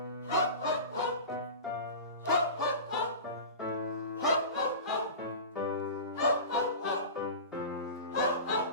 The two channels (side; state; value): both; inverted; correlation -0.31